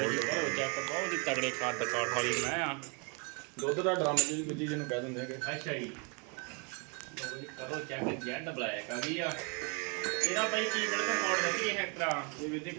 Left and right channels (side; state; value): left; quieter; 34.4 dB